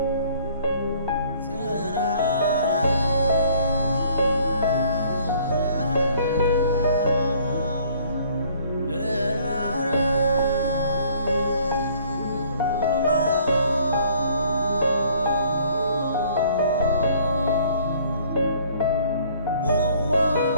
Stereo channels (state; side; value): inverted; both; correlation -0.58